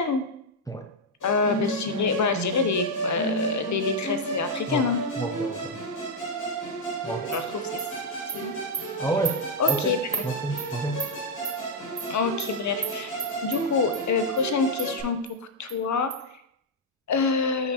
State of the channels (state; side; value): normal; both; correlation -0.02